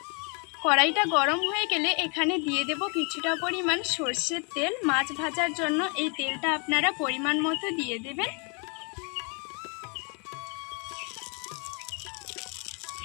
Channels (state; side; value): quieter; right; 35.2 dB